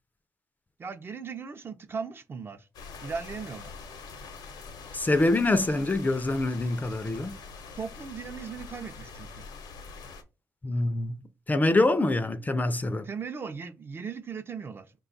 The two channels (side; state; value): both; normal; correlation 0.84